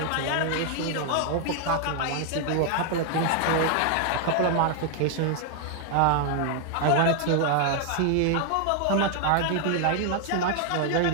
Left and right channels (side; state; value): both; different; correlation 0.00